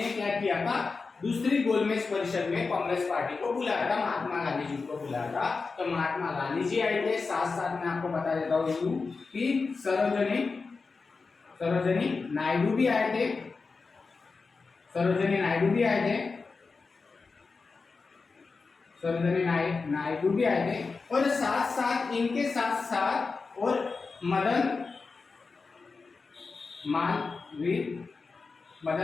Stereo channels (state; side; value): quieter; right; 4.4 dB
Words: क्या किया था, दूसरी गोलमेज परिषद में कांग्रेस पार्टी को बुलाया था, महात्मा गांधी जी को बुलाया था। तो महात्मा गांधी जी आए थे, साथ साथ में आपको बता देता हूँ कि सरोजिनी नायडू भी आए थे, सरोजिनी नायडू भी आए थे, सरोजिनी नायडू भी आए थे, और साथ साथ इनके साथ साथ और मदन मालवीय